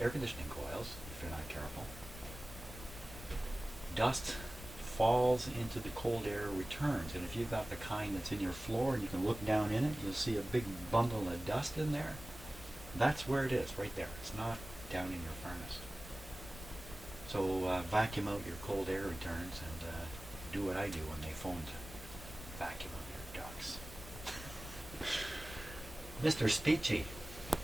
air conditioning coils if you're not careful. Dust falls into the cold air, returns, and if you've got the kind that's in your floor and you can look down in it, you'll see a big bundle of dust in there. That's where it is, right there. It's not down in your furnace. So vacuum out your cold air returns and do what I do when they phone to vacuum out your ducts. Mr. Speechy,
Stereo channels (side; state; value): left; noise; rumble, 13 dB below the sound